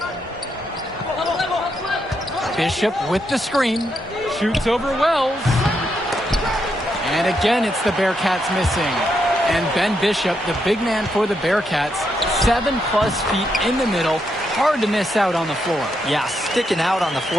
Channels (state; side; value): normal; both; correlation 0.80